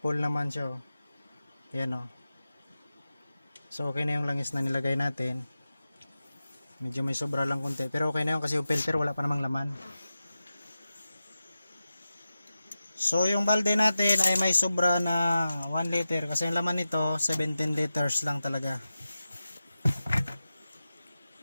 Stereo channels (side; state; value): both; inverted; correlation -0.93